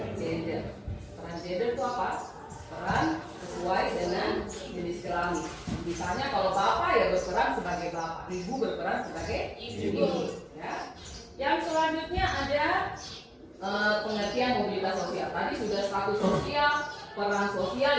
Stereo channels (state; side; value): identical; both; correlation 1.00